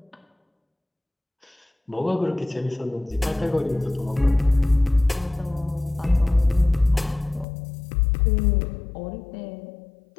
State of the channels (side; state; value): right; drops out; at 7.5 s